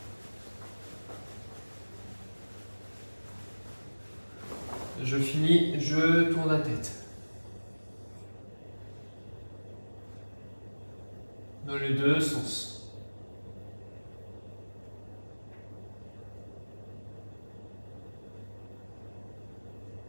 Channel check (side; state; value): both; inverted; correlation -1.00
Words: Je finis, je tourne la tête. Dans les deux sens.